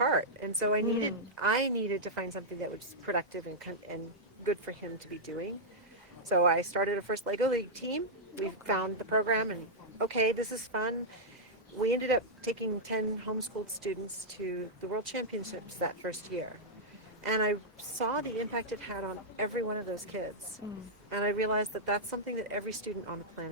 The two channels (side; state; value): both; normal; correlation -0.07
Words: and so I needed to find something that was productive and good for him to be doing. So I started a first Lego League team. We found the program, and okay, this is fun. We ended up taking 10 homeschooled students to the World Championships that first year. And I saw the impact it had on every one of those kids. And I realized that that's something that every student on the